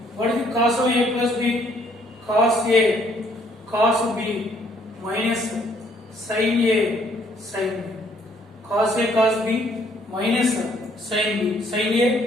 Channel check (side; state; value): both; normal; correlation 0.64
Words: What is the cos of A plus B? Cos A cos B minus sin A sin B. Cos A cos B minus sin B. Sin